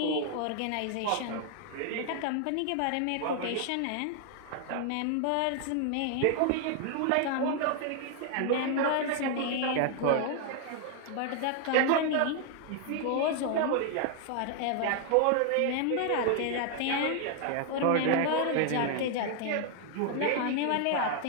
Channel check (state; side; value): different; both; correlation 0.00